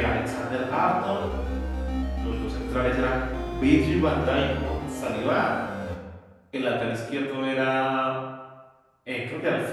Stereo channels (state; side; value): identical; both; correlation 1.00